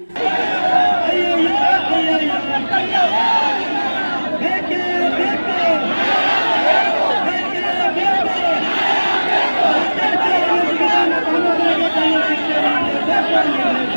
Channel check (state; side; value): inverted; both; correlation -1.00